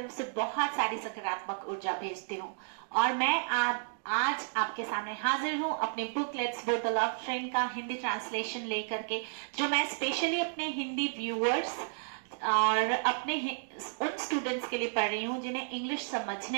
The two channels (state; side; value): silent; left; digital silence